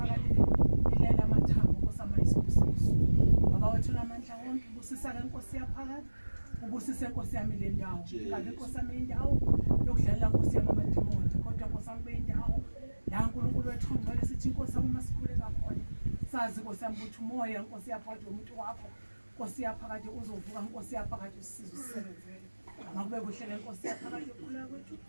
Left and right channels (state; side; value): inverted; both; correlation -1.00